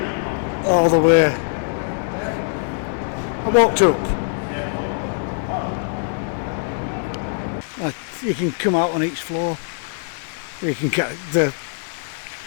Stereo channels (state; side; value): silent; right; digital silence